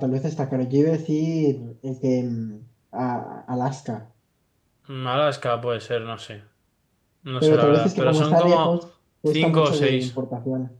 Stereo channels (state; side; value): identical; both; correlation 1.00